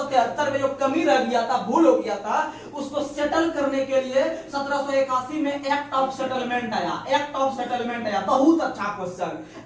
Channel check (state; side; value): identical; both; correlation 1.00